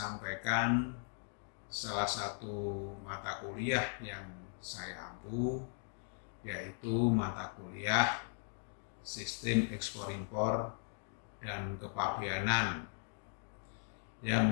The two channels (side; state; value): right; silent; 52 dB below the other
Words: salah satu mata kuliah yang saya ampu, yaitu mata kuliah Sistem Ekspor-Impor dan Kepabeanan